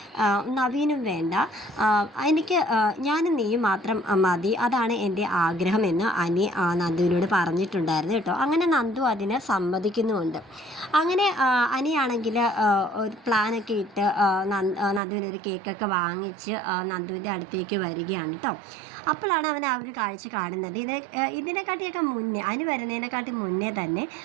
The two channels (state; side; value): drops out; left; at 15.0 s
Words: നവീനും വേണ്ട, എനിക്ക് ഞാനും നീയും മാത്രം മതി, അതാണ് എൻ്റെ ആഗ്രഹമെന്ന് അനി നന്ദുവിനോട് പറഞ്ഞിട്ടുണ്ടായിരുന്നു കേട്ടോ. അങ്ങനെ നന്ദു അതിന് സമ്മതിക്കുന്നുമുണ്ട്. അങ്ങനെ അനിയാണെങ്കിൽ ഒരു പ്ലാനൊക്കെ ഇട്ട് നന്ദുവിനൊരു കേക്കൊക്കെ വാങ്ങിച്ച് നന്ദുവിൻ്റെ അടുത്തേക്ക് വരികയാണ് കേട്ടോ. അപ്പോഴാണ് അവൻ ആ ഒരു കാഴ്ച കാണുന്നത്. ഇതിനെക്കാട്ടിയൊക്കെ മുന്നേ, അനി വരുന്നതിനെക്കാട്ടി മുന്നേ തന്നെ